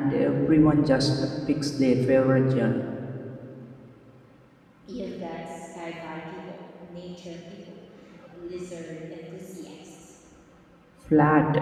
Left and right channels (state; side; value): identical; both; correlation 1.00